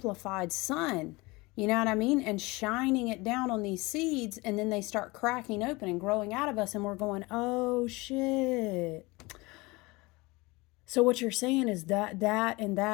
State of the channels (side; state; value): right; quieter; 23.6 dB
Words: sun, you know what I mean? And shining it down on these seeds, and then they start cracking open and growing out of us, and we're going, oh shit. So what you're saying is that, and